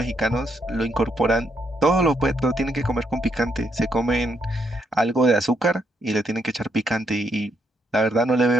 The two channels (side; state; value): both; normal; correlation 0.77